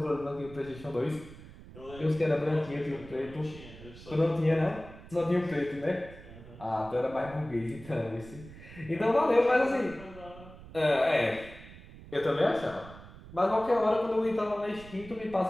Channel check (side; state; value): right; noise; rumble, 17 dB below the sound